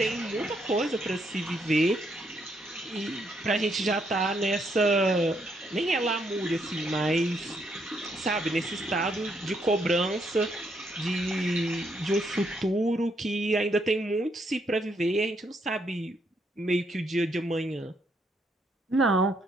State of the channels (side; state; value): both; normal; correlation 0.75